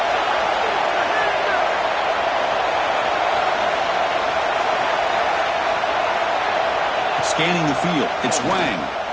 Scanning the field, it's Wang.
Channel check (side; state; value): both; identical; correlation 1.00